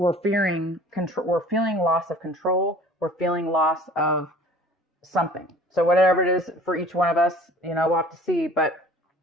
fearing control. We're feeling loss of control. We're feeling loss of something. So whatever it is for each one of us, we'll have to see. But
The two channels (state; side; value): normal; both; correlation 0.48